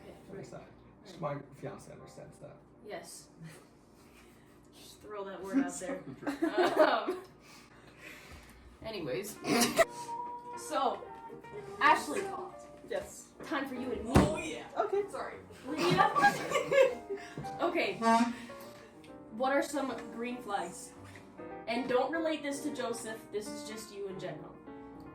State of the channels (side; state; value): both; identical; correlation 1.00